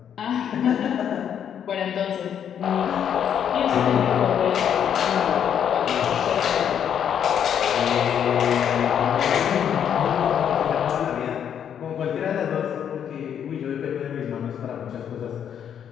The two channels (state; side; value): quieter; right; 8.8 dB